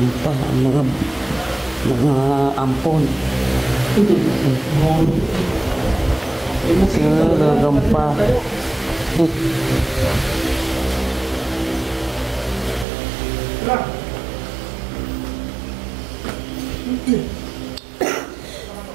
pa ang mga ampon. Tulugan pa.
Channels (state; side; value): drops out; left; at 12.9 s